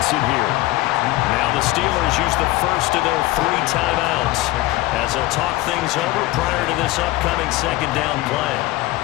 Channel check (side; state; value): right; quieter; 18.2 dB